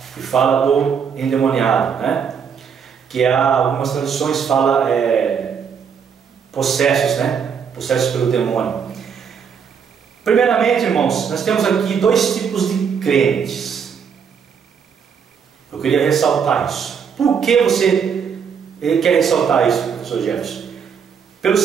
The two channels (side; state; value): left; quieter; 6.9 dB